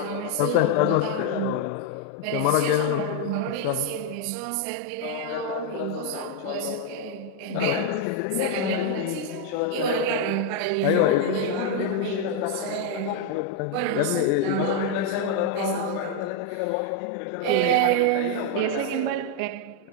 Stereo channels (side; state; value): both; different; correlation 0.00